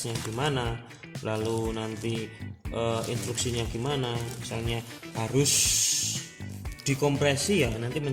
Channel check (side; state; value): both; identical; correlation 1.00